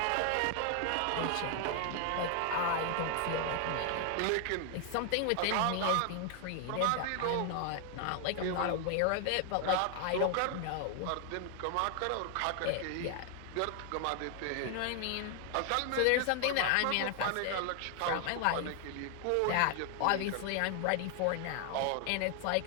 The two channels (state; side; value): different; both; correlation 0.00